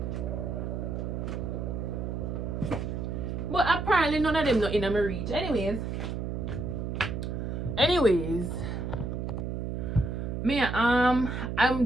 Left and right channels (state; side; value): noise; right; hum, 3 dB below the sound